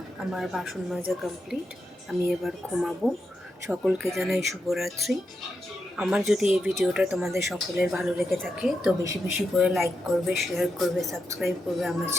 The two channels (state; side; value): normal; both; correlation 0.86